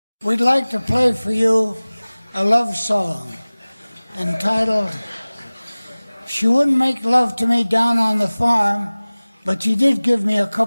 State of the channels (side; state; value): both; inverted; correlation -0.99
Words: We'd like to play for you a love song entitled, She Wouldn't Make Love to Me Down on the Farm, but She Did Give Me a